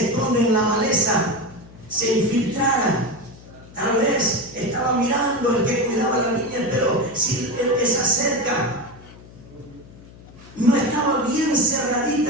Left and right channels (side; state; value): left; noise; hum, 20 dB below the sound